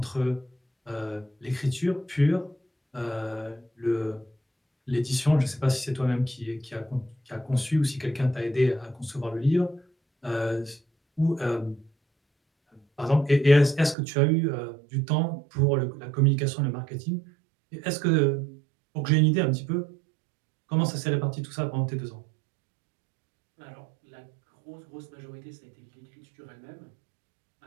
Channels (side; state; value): left; drops out; at 14.0 s